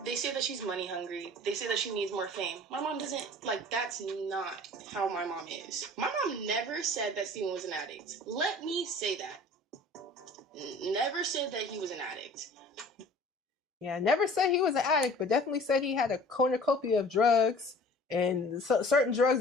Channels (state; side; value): normal; both; correlation 0.46